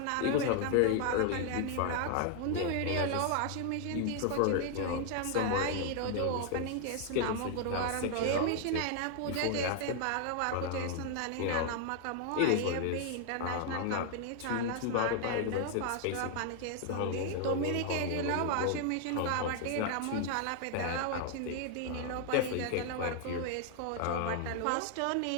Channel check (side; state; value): both; different; correlation 0.00